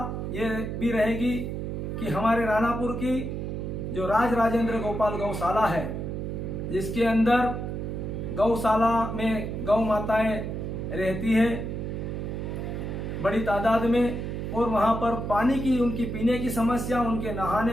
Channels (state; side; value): noise; right; hum, 4 dB below the sound